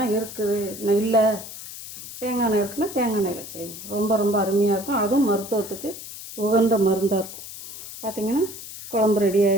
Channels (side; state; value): left; noise; hiss, 12 dB below the sound